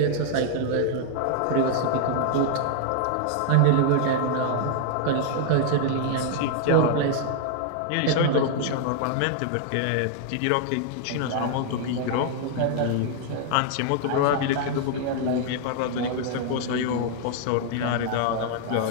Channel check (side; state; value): both; different; correlation 0.00